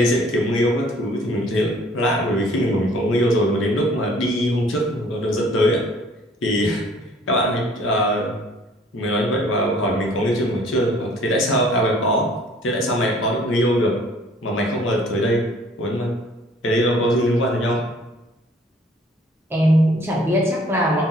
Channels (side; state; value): both; normal; correlation 0.55